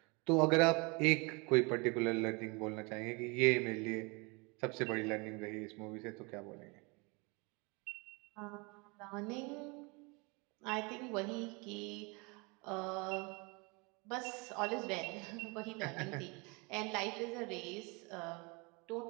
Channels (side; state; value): left; quieter; 29.1 dB